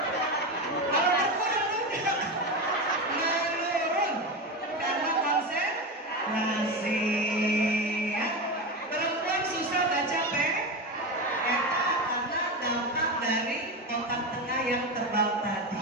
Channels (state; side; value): normal; both; correlation 0.19